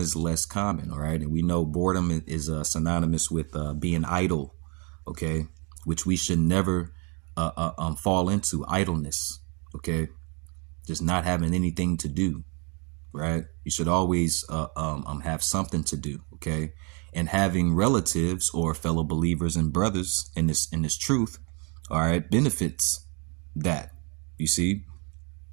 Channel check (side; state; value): left; quieter; 34.3 dB